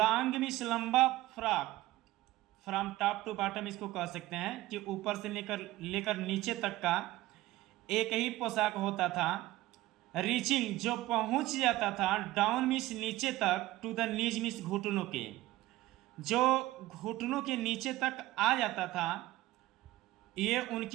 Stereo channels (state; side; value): quieter; left; 17.2 dB